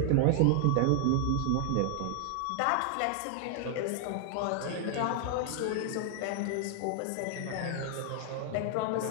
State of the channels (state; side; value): different; both; correlation 0.00